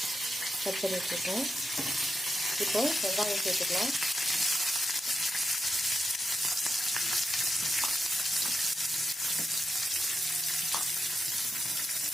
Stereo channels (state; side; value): normal; both; correlation 0.86